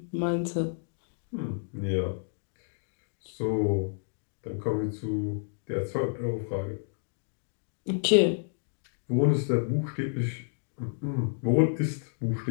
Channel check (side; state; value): right; silent; digital silence